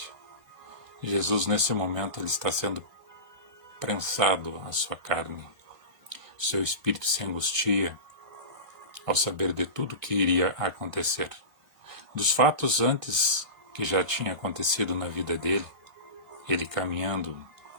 Jesus, nesse momento, ele está sendo prensado a sua carne. Seu espírito se angustia ao saber de tudo que iria acontecer. Dos fatos antes que já tinha acontecido na vida dele, ele caminhando,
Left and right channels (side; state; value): left; late; 2.1 ms